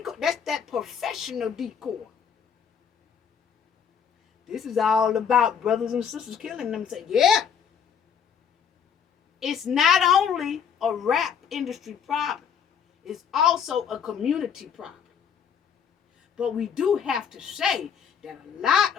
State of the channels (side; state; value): right; quieter; 7.4 dB